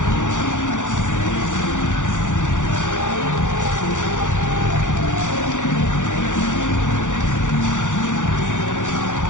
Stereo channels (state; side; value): late; right; 0.87 ms